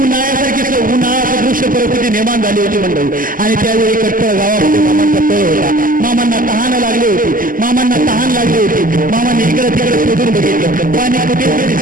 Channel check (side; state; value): left; late; 0.41 ms